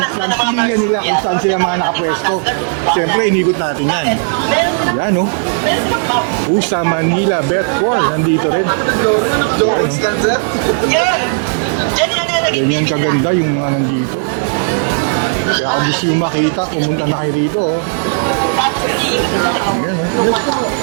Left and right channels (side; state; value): left; silent; digital silence